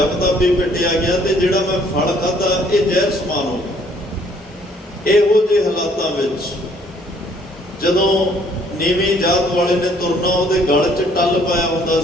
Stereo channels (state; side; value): normal; both; correlation 0.62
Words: ਤਪ ਵੀ ਪਿੱਟਿਆ ਗਿਆ ਤੇ ਜਿਹੜਾ ਮੈਂ ਫਲ ਖਾਧਾ ਇਹ ਜ਼ਹਿਰ ਸਮਾਨ ਹੋ ਗਿਆ। ਇਹੋ ਜਿਹੇ ਹਾਲਾਤਾਂ ਵਿੱਚ ਜਦੋਂ ਨੀਵੀਂ ਜਾਤ ਵਾਲੇ ਨੇ ਤੁਰਨਾ, ਉਹਦੇ ਗਲ 'ਚ ਟੱਲ ਪਾਇਆ ਹੁੰਦਾ